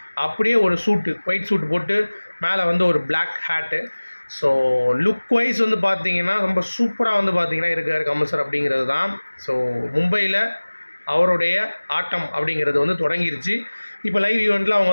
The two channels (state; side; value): inverted; both; correlation -1.00